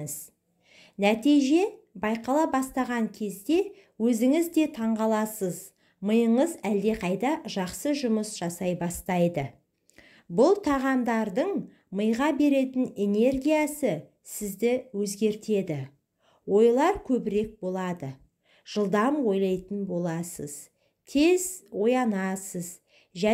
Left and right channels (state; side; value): identical; both; correlation 1.00